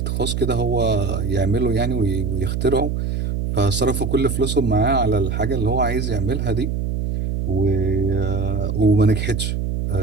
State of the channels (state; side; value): noise; right; hum, 1 dB below the sound